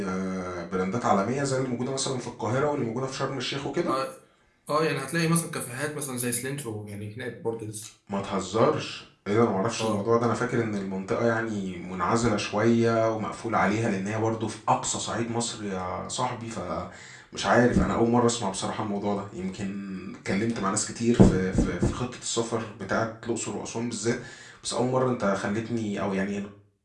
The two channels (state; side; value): identical; both; correlation 1.00